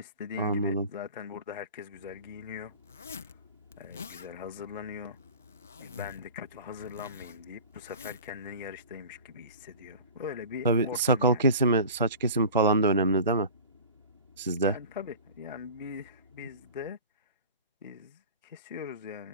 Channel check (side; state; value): both; inverted; correlation -0.38